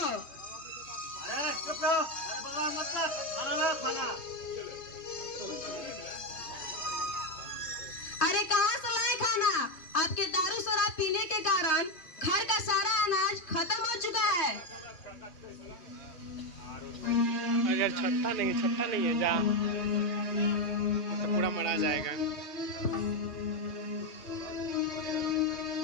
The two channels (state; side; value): late; right; 3.1 ms